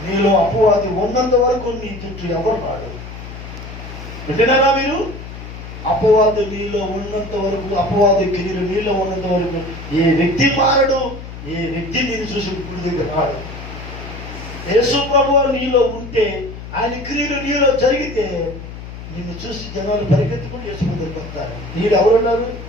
నీలో అపవాది ఉన్నంత వరకు నీ చుట్టూ ఎవరు రాడు. వింటున్నారా మీరు? అపవాది నీలో ఉన్నంత వరకు, అపవాది క్రియలు నీలో ఉన్నంత వరకు ఏ వ్యక్తి మారడు, ఏ వ్యక్తి నేను చూసి గుడి దగ్గర రాడు. యేసు ప్రభువు నీలో ఉంటే, ఆయన క్రియలు నీలో జరిగితే నిన్ను చూసి జనాలు పరిగెత్తుకుని యేసు దగ్గరికి వస్తారు. నీడు ఎవరున్నారు?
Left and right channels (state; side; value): noise; left; hum, 12 dB below the sound